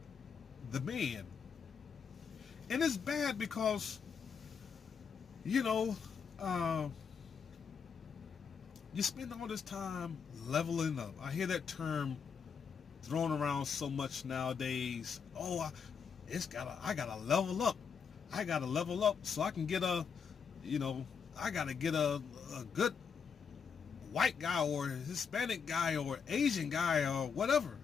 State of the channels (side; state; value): right; quieter; 6.4 dB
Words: the man. And it's bad because, you know, you spend all this time leveling up. I hear that term thrown around so much nowadays. Oh, I gotta level up. I gotta level up so I can get I gotta get a good white guy or Hispanic guy or Asian guy or whatever